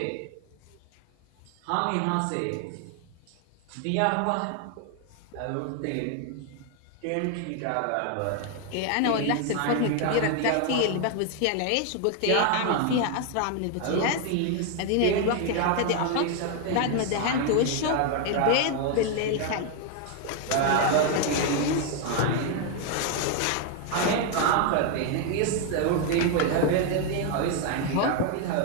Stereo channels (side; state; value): both; different; correlation 0.01